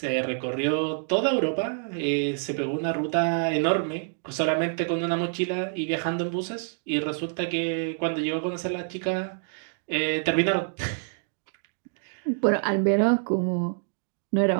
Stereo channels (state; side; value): silent; left; digital silence